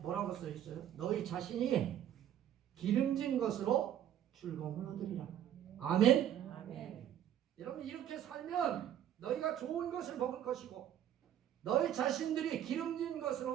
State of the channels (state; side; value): quieter; left; 10.8 dB